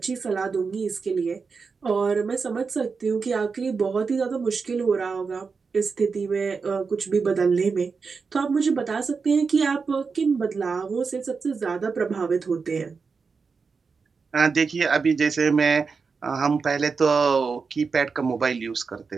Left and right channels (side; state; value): left; quieter; 5.0 dB